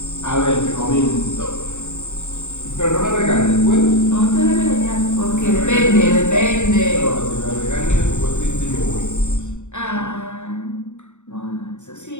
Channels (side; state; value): right; late; 0.84 ms